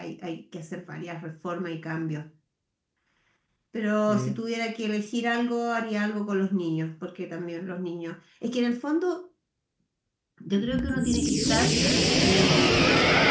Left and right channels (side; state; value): both; identical; correlation 1.00